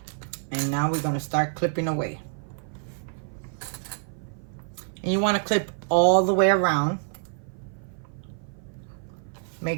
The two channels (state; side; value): silent; left; 56 dB below the other